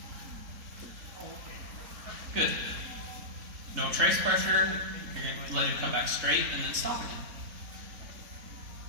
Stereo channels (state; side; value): late; left; 3.6 ms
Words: Good. No trace pressure. You're going to let him come back straight and then stop again.